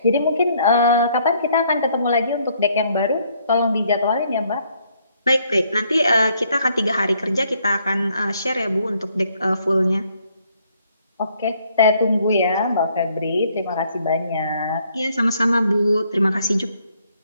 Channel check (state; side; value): inverted; both; correlation -0.68